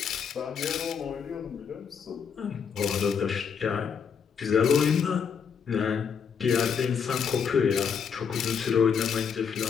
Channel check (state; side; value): quieter; right; 6.7 dB